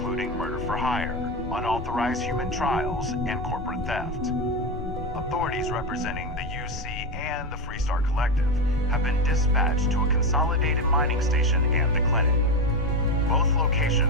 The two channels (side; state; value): both; normal; correlation 0.14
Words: murder for hire, unauthorized human trials, and corporate theft. Authorities representing the UC and the Freestar Collective have been dispatched to a consolidated mining station and the clinic. Both